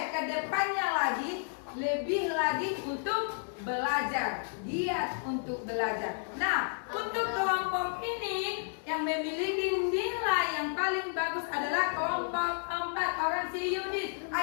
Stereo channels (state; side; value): silent; right; digital silence